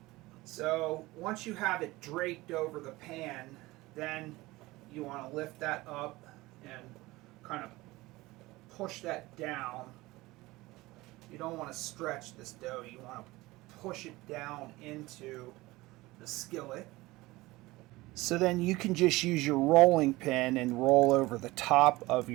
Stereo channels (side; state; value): left; quieter; 20.1 dB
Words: So once you have it draped over the pan, then you want to lift that up and kind of push that down. You don't want to stretch this dough, you want to push it down into the skillet. So then you can just use your rolling pin and roll over the top of